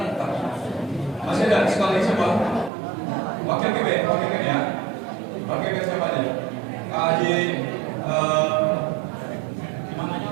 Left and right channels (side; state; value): left; drops out; at 2.7 s